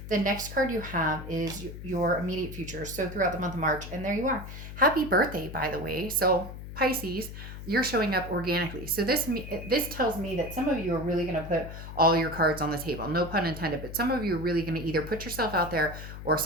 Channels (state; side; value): noise; left; hum, 11 dB below the sound